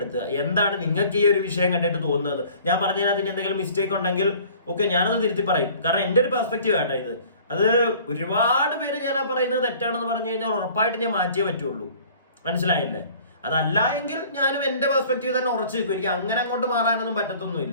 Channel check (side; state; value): both; inverted; correlation -0.50